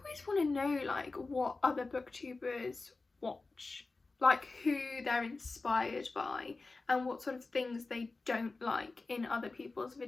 want to know like what other booktubers watch, like who they're inspired by and what sort of things they don't like in other people's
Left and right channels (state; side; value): quieter; right; 3.7 dB